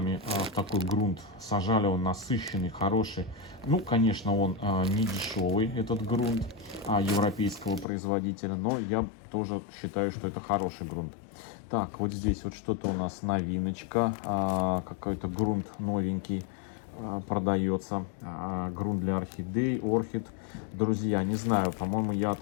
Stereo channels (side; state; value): right; drops out; at 7.9 s